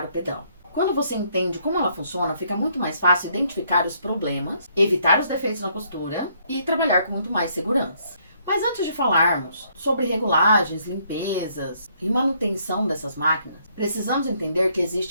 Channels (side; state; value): both; inverted; correlation -0.69